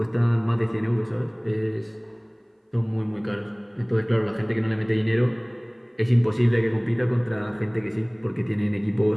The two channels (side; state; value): both; identical; correlation 1.00